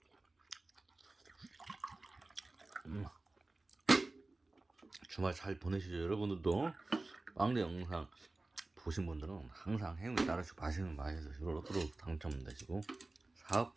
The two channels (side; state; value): left; quieter; 3.1 dB